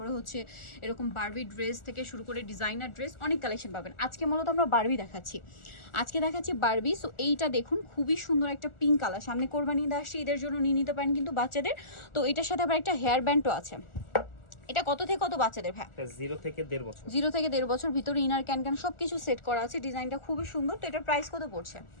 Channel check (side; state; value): right; late; 1.4 ms